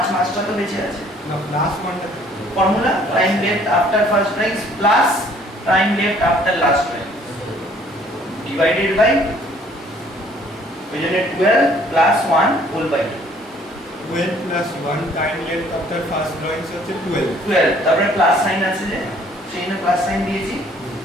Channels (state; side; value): normal; both; correlation 0.58